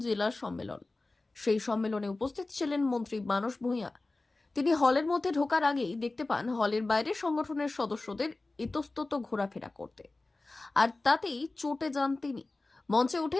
জেলা সম্মেলন। সেই সম্মেলনে উপস্থিত ছিলেন মন্ত্রী মানস ভূঁইয়া। তিনি হলের মধ্যে ঢোকার আগেই দেখতে পান হলের বাইরে সংগঠনের সদস্যদের ইতস্তত ঘোরাফেরা করতে, আর তাতেই চটে যান তিনি। মঞ্চে উঠে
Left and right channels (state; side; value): quieter; right; 3.2 dB